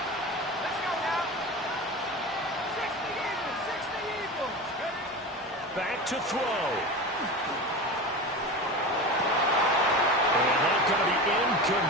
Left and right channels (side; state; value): both; normal; correlation 0.28